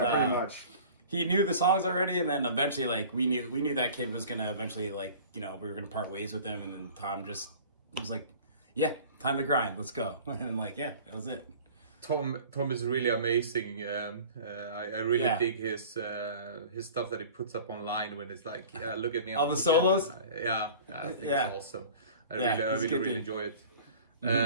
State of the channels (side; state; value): both; inverted; correlation -0.43